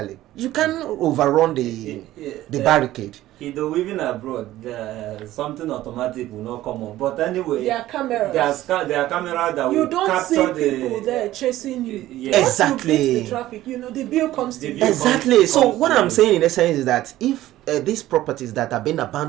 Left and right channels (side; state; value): left; quieter; 14.9 dB